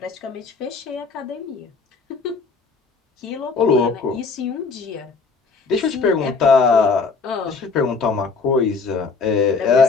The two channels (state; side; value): quieter; right; 4.6 dB